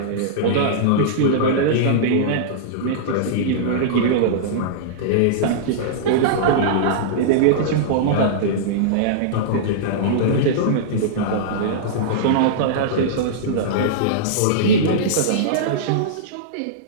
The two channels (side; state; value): both; different; correlation -0.03